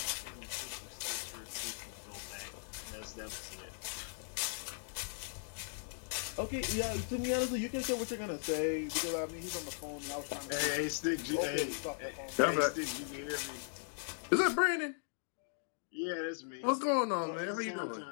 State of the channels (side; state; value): right; silent; digital silence